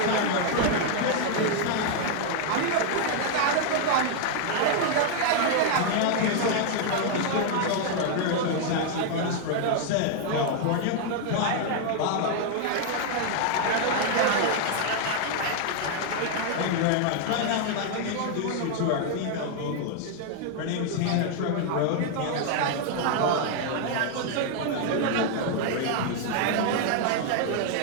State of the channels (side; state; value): both; different; correlation 0.00